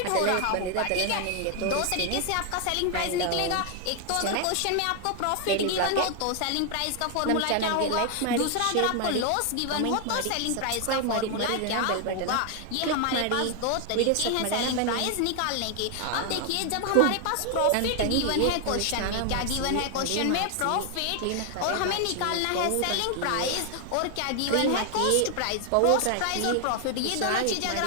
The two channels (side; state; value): both; different; correlation 0.00